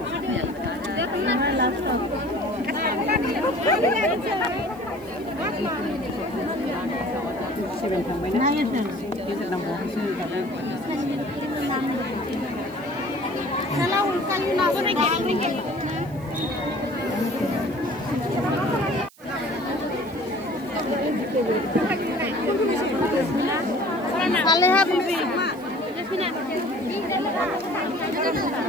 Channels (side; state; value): right; noise; hiss, 26 dB below the sound